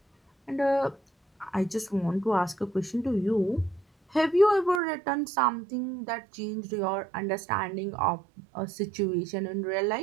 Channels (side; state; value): left; drops out; at 4.8 s